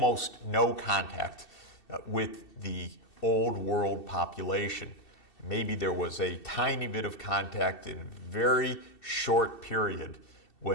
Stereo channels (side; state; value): right; late; 2.7 ms